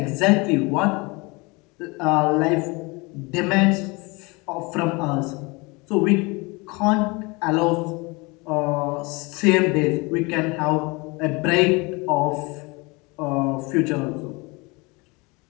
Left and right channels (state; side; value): quieter; right; 26.6 dB